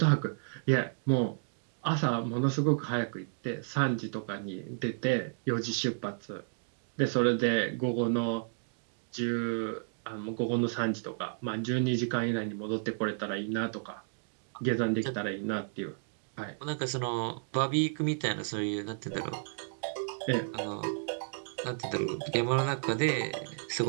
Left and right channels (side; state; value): left; silent; digital silence